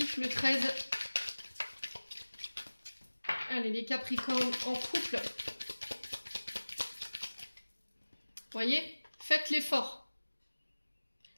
le 13. Allez, les Capricornes en couple. Voyez, faites l'effort.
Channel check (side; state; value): both; inverted; correlation -1.00